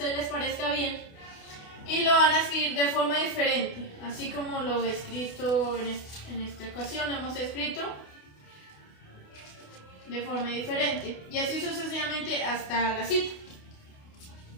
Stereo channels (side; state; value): right; late; 28 ms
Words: les parezca bien, y lo van a escribir de forma diferente, así como lo he escrito en esta ocasión, lo hemos escrito de forma diferente, y así sucesivamente hasta la cita.